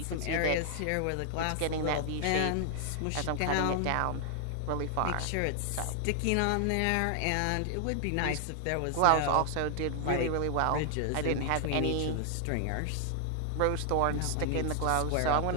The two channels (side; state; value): both; different; correlation 0.00